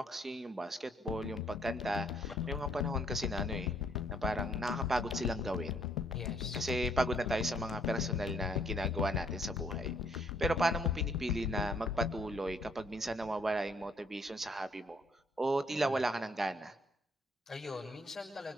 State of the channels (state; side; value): normal; both; correlation 0.66